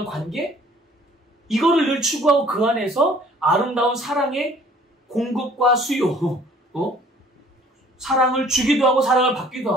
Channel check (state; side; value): normal; both; correlation 0.55